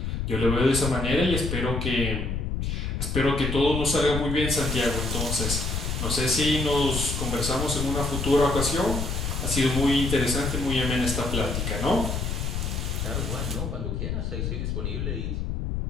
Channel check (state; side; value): noise; left; rumble, 2 dB below the sound